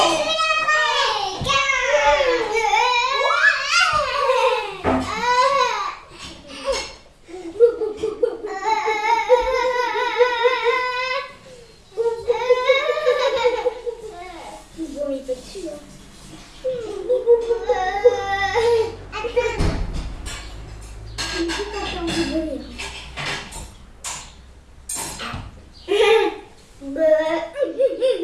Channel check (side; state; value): both; identical; correlation 1.00